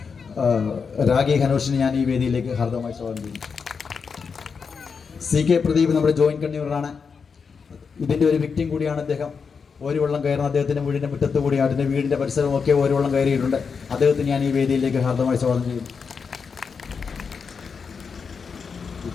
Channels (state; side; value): quieter; right; 5.7 dB